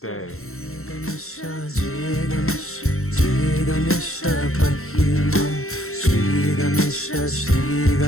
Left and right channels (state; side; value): late; right; 0.62 ms